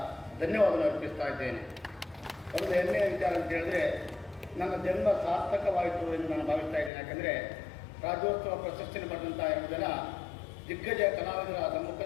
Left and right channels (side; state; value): right; drops out; at 6.9 s